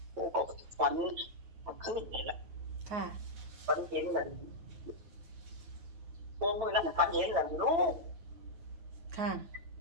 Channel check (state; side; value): late; left; 9.0 ms